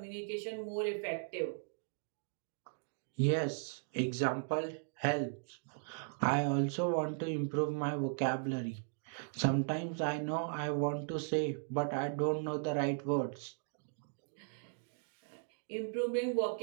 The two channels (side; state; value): left; silent; digital silence